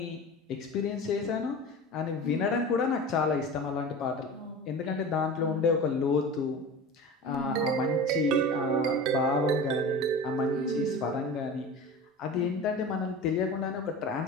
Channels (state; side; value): normal; both; correlation 0.33